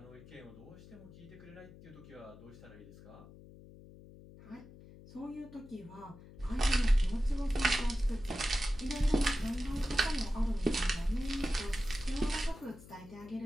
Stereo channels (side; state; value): left; noise; hum, 19 dB below the sound